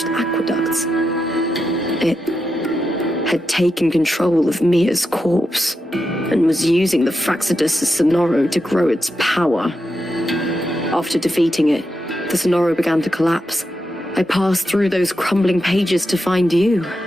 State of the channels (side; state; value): both; normal; correlation 0.87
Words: aqueducts. It had taken control of Mia's corpse, and was using the Fraxidus' Sonoro to grow its power. After defeating it, the Sonoro began to collapse. I passed through those crumbling pages to find you.